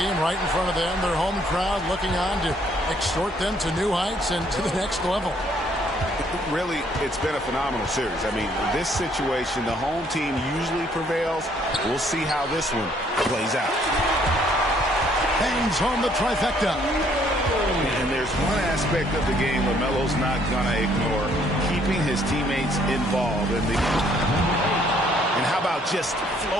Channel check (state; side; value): normal; both; correlation 0.65